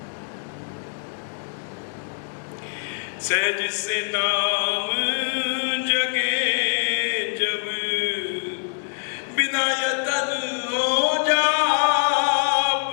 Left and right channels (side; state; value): right; silent; digital silence